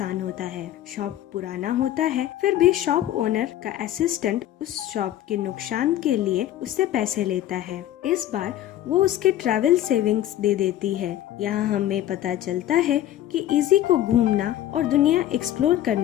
होता है। शॉप पुराना होता है, फिर भी शॉप ओनर का असिस्टेंट उस शॉप के नुकसान के लिए उससे पैसे लेता है। इस बार वो उसके ट्रैवल सेविंग्स दे देती है। यहाँ हमें पता चलता है कि इजी को घूमना और दुनिया एक्सप्लोर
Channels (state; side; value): quieter; right; 12.7 dB